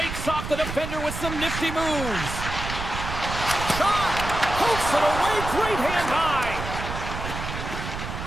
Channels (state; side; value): noise; right; rumble, 6 dB below the sound